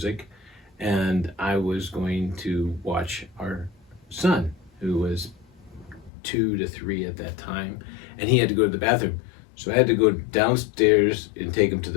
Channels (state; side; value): drops out; right; at 6.1 s